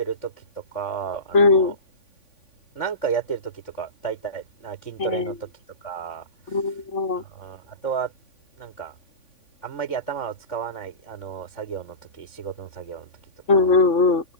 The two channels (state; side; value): late; right; 3.5 ms